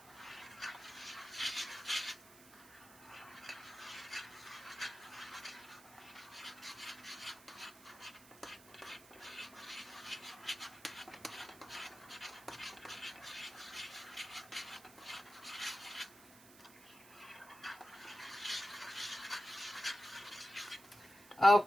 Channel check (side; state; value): right; noise; hiss, 20 dB below the sound